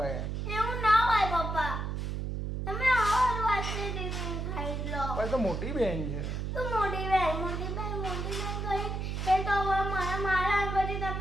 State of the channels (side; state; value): right; noise; hum, 3 dB below the sound